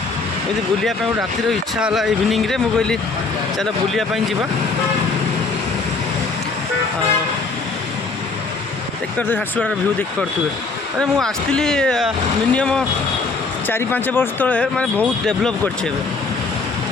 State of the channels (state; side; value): quieter; right; 4.0 dB